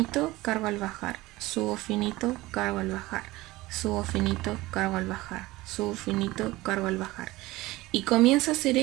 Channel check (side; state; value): left; quieter; 19.3 dB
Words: cargo al bajar. Subo finito, cargo al bajar. Subo finito, cargo al bajar. Subo finito, cargo al bajar. Y comienzo a hacer